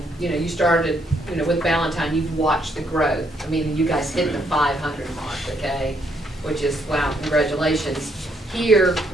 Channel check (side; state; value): both; normal; correlation 0.72